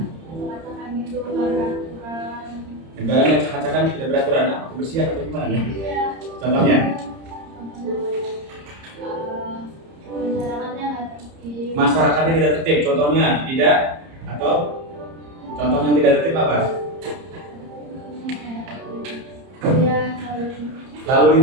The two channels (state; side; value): late; left; 30 ms